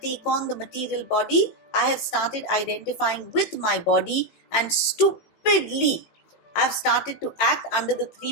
on the material body, I have started identifying with my body and stupidly I've started to act under the 3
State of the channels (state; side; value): late; right; 18 ms